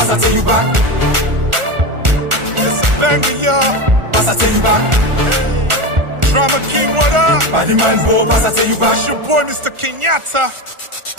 I tell you back. It's a banger, y'all. Pass I tell you back. Hey. Drama King, what up? Body man go, pass I tell you back. It's your boy, Mr. Kenyatta.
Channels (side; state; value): left; late; 1.4 ms